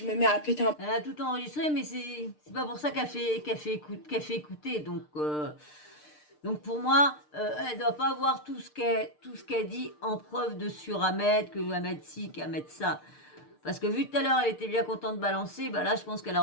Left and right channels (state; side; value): late; right; 6.6 ms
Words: me mets à péter un... Elle a tout enregistré, mais c'est pas pour ça qu'elle fait écouter. Donc pour moi, elle doit pas avoir tout ce qu'elle dit en preuve de sur Ahmed, que Ahmed ci, qu'Ahmed ça. Parce que vu tout à l'heure, elle était bien contente de balancer, bah là, je pense qu'elle